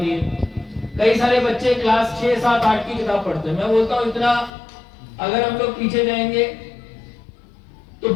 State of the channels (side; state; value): right; drops out; at 4.5 s